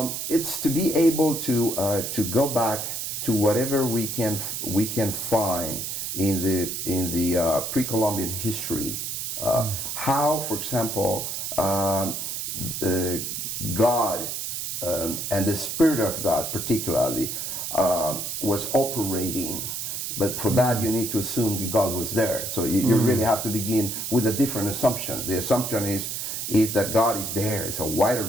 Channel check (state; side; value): noise; right; hiss, 4 dB below the sound